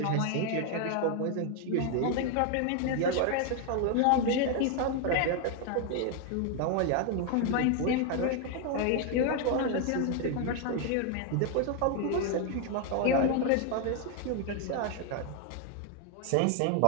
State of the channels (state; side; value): different; both; correlation 0.01